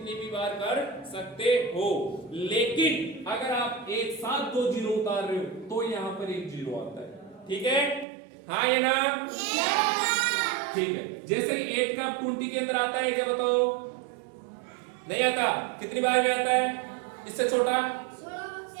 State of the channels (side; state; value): left; drops out; at 8.1 s